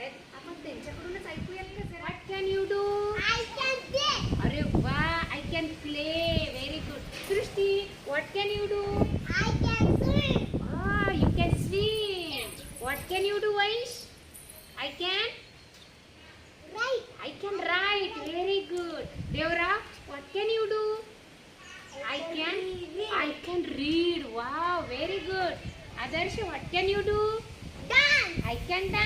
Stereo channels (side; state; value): both; identical; correlation 1.00